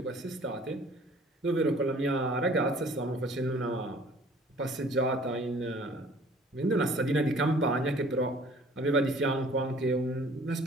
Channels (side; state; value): both; normal; correlation 0.53